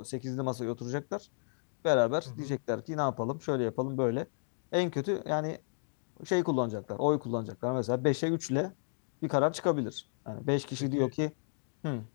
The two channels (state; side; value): silent; right; digital silence